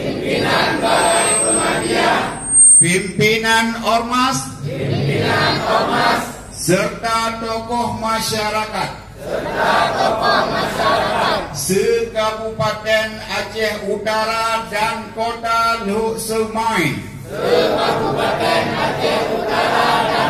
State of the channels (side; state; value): both; identical; correlation 1.00